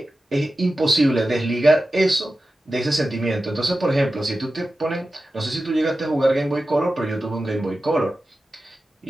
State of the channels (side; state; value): both; normal; correlation 0.94